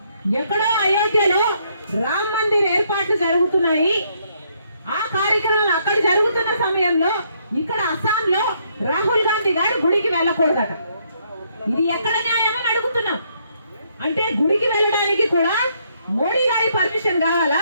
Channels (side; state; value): both; inverted; correlation -0.72